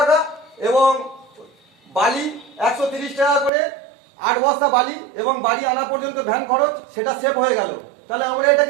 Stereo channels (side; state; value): left; drops out; at 3.5 s